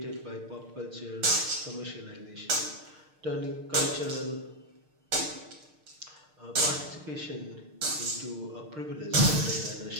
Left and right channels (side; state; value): left; late; 6.5 ms